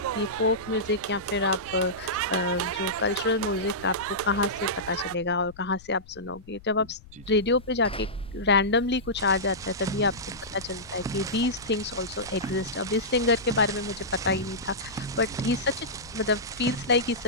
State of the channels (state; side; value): noise; left; rumble, 22 dB below the sound